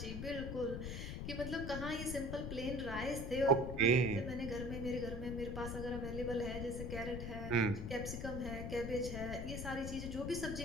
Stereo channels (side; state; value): left; noise; rumble, 5 dB below the sound